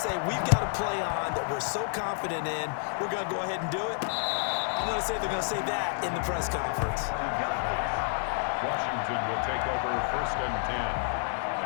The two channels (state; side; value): silent; right; digital silence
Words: say, we've got a play on that we're so confident in, we're going to go ahead and do it? I'm going to say they're going to say that in the press conference. Washington will take over 1st and 10